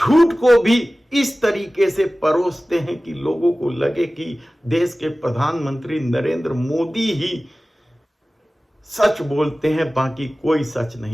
को भी इस तरीके से परोसते हैं कि लोगों को लगे कि देश के प्रधानमंत्री नरेंद्र मोदी ही सच बोलते हैं, बाकी कोई सच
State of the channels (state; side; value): normal; both; correlation 0.97